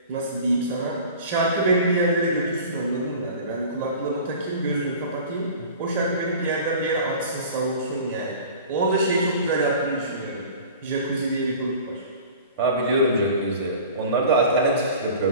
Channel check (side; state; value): both; inverted; correlation -0.41